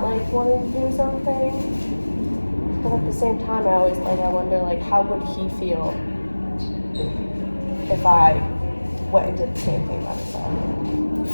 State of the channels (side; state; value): both; inverted; correlation -1.00